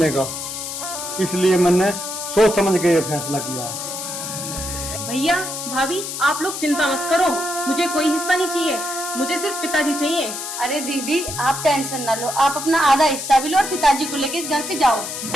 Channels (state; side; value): noise; left; hiss, 6 dB below the sound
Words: का। इसलिए मैंने सोच समझ के ये फैसला किया है। भैया भाभी आप लोग चिंता मत करो, मुझे कोई हिस्सा नहीं चाहिए, मुझे सिर्फ पिताजी चाहिए। अरे दीदी आप टेंशन ना लो, आप अपना आधा हिस्सा भी लो और पिताजी को लेके इस घर से जाओ।